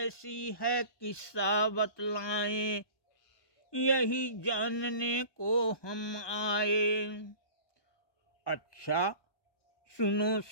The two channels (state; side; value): late; right; 1.2 ms